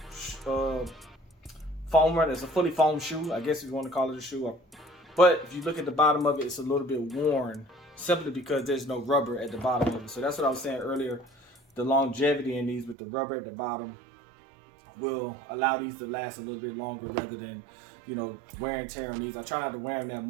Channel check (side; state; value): left; drops out; at 13.0 s